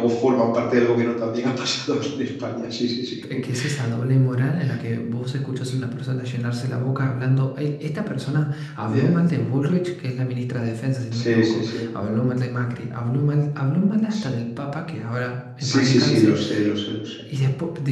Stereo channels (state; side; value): identical; both; correlation 1.00